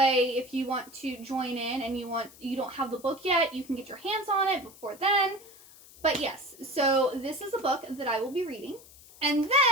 if you want to join in and you don't have the book yet, you can get your hands on it before then. But yes, so this is a book that I will be reading. And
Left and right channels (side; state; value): left; noise; hiss, 22 dB below the sound